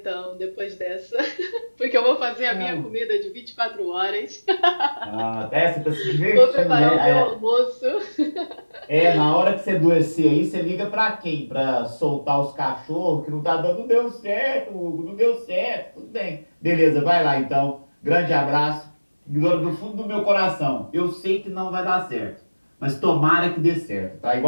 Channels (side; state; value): both; inverted; correlation -1.00